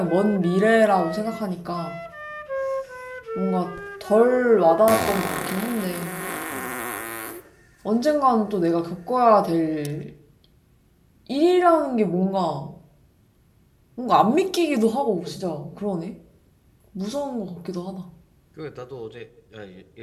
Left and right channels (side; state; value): both; identical; correlation 1.00